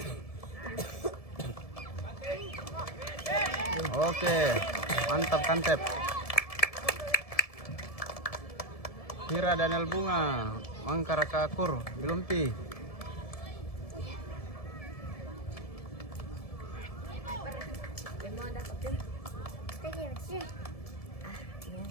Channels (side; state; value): right; late; 1.7 ms